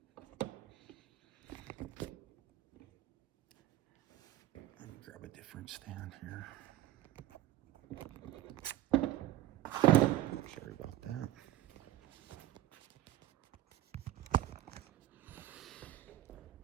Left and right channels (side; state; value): left; quieter; 14.0 dB